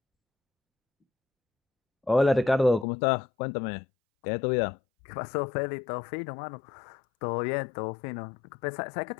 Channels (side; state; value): right; drops out; at 2.9 s